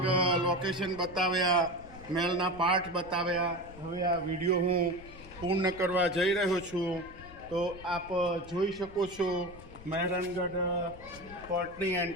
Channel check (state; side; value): noise; left; rumble, 18 dB below the sound